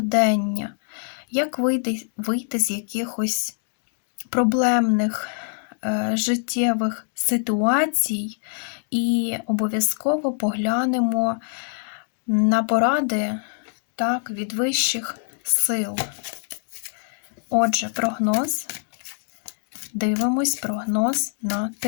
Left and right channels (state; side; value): silent; right; 62 dB below the other